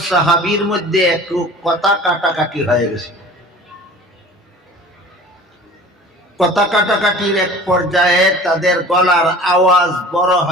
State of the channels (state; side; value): normal; both; correlation 0.43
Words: সাহাবীর মধ্যে একটু কথা কাটাকাটি হয়ে গেছে। কথা কাটাকাটির এক পর্যায়ে তাদের গলার আওয়াজ বড়